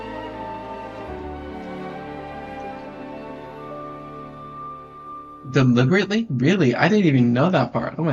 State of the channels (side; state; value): both; identical; correlation 1.00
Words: Deliberately? Really? I didn't even know that part. Oh